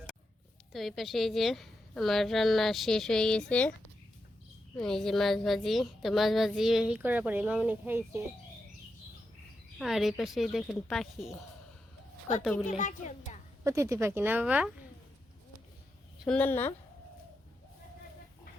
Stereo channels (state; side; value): normal; both; correlation 0.86